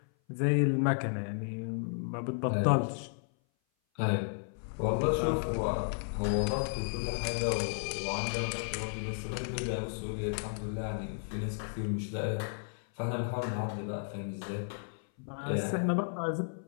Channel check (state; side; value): silent; right; 56 dB below the other